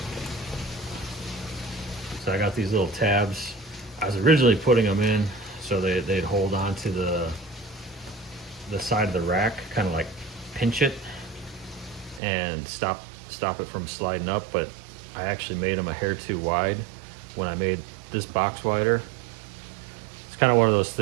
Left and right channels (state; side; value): drops out; left; at 12.2 s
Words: So I got these little tabs. I was originally putting them in so they'd hold on to the side of the rack, kind of like pinch it and stop it from sliding up, but I actually made them a hair too wide when I made this box wider. It's kind of one of those